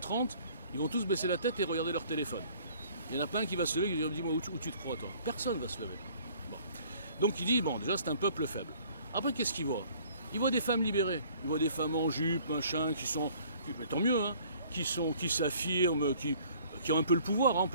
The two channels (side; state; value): both; inverted; correlation -0.55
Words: ils vont tous baisser la tête et regarder leur téléphone. Il n'y en a pas un qui va se lever et dire, dis-moi où tu te crois, toi. Personne va se lever. Bon. Donc il dit, bon, déjà c'est un peuple faible. Après, qu'est-ce qu'il voit? Il voit des femmes libérées, il voit des femmes en jupe, machin, mais tant mieux, hein, qui s'affirment, qui ont un peu le pouvoir, hein, on